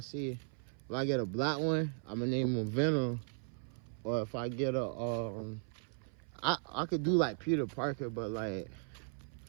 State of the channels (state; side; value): silent; left; 53 dB below the other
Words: if I get a black one, I'm gonna name him Venom. Or if I get a, I could do like Peter Parker, but like,